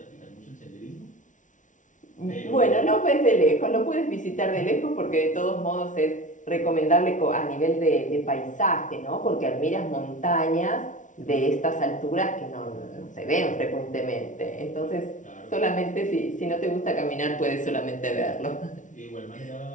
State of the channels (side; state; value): right; late; 0.37 ms